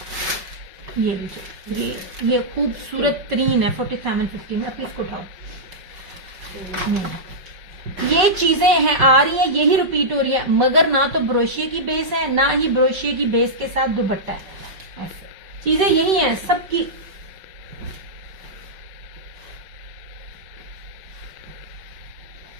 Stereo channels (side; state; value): left; late; 5.4 ms